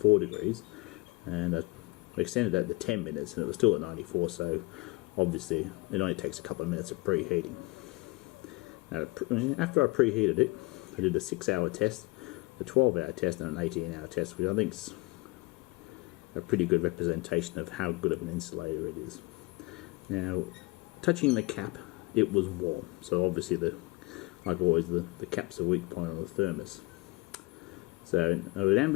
degrees, and I extended that to 10 minutes, and it was still at 94, so obviously it only takes a couple of minutes of preheating. Now, after I preheated it, I did a 6-hour test, a 12-hour test, and an 18-hour test, which I think is a pretty good representation of how good of an insulator it is. Now, touching the cap, it was warm, so obviously, like always, the cap's a weak point on the thermos. So, at an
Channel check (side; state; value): right; quieter; 24.2 dB